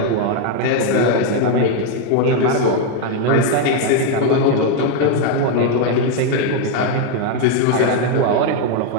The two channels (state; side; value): different; both; correlation 0.01